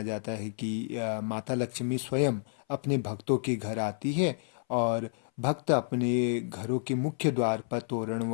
जाता है कि माता लक्ष्मी स्वयं अपने भक्तों के घर आती है और भक्त अपने घरों के मुख्य द्वार पर तोरण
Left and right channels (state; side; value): silent; right; 58 dB below the other